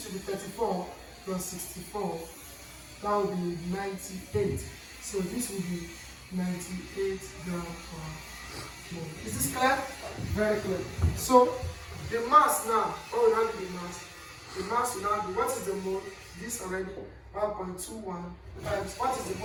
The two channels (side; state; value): both; identical; correlation 1.00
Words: should be 34 plus 64. That will be 98. So this will be 98 grams per mole. Is this clear? Very clear. So the mass now, what will now be the mass? The mass will now be, what is the mole? This already 1.21 times, what is the